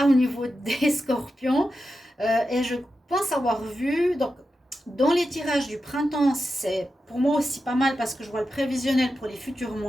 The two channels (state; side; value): normal; both; correlation 0.90